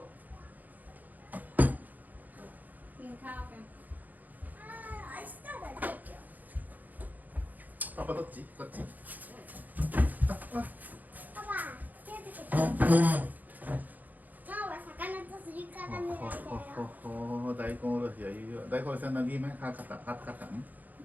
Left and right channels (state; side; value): late; left; 0.082 ms